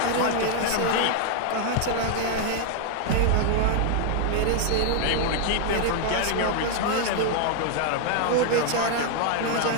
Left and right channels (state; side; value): different; both; correlation 0.00